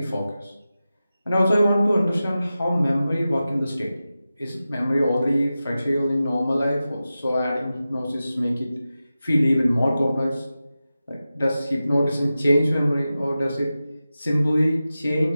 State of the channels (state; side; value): inverted; both; correlation -0.94